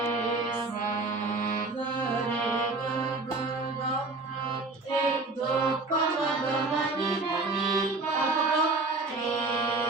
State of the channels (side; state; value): left; quieter; 3.4 dB